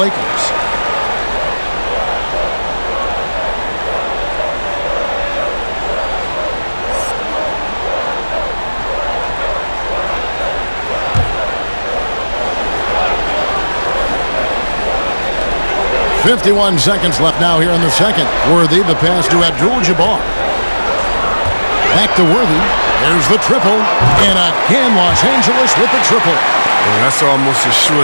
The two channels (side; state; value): both; inverted; correlation -1.00